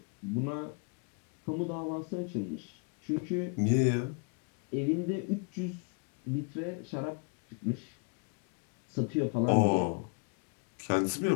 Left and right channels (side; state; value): right; quieter; 35.2 dB